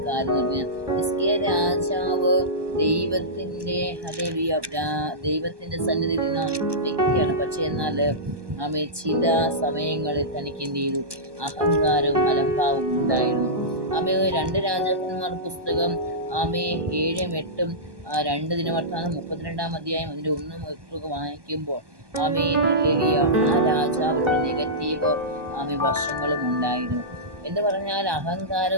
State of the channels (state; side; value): late; left; 1.2 ms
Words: കാര്യം എന്ന് പറഞ്ഞാൽ, ഹിസ്കിയ രാജാവ് ദൈവത്തിൻ്റെ ഹല്ലേലൂയ ദൈവത്തിൻ്റെ സന്നിധിയിൽ നിന്ന വ്യക്തിയാണ്. പക്ഷേ എന്നാൽ ചില സമയങ്ങളിൽ തനിക്ക് എന്ത് ചെയ്തു? അഹങ്കാരവും അലംഭാവവും ഉണ്ടായിരുന്നു. 2 രാജാക്കന്മാർ പുസ്തകം 7-ഉം 8-ഉം 2 ദിനവൃത്താന്തം 32 അധ്യായം അതിൻ്റെ 1-ഉം വായിക്കുമ്പോൾ ഹല്ലേലൂയ ആ രാജാവിനുള്ള നെഗറ്റീവ് വശങ്ങളും ഉണ്ടായിരുന്നു. എന്ന് പറഞ്ഞാൽ